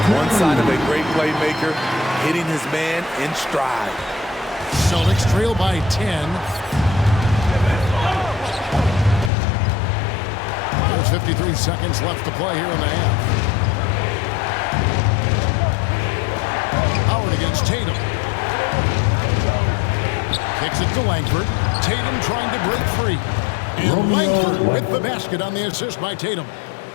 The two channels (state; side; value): drops out; right; at 9.3 s